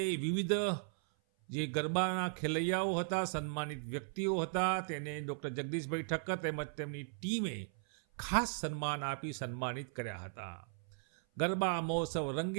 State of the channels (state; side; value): silent; left; 53 dB below the other